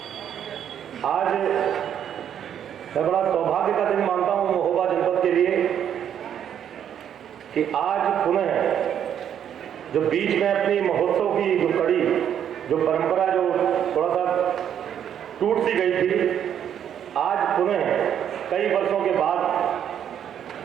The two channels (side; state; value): left; quieter; 9.3 dB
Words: आज मैं बड़ा सौभाग्य का दिन मानता हूं महोबा जनपद के लिए कि आज पुनः जो बीच में अपनी महोत्सव की जो कड़ी, जो परंपरा जो थोड़ा सा टूट सी गई थी, आज पुनः कई वर्षों के